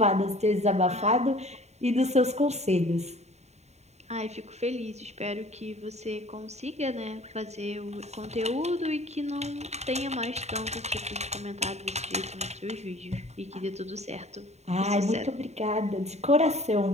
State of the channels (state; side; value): late; left; 0.32 ms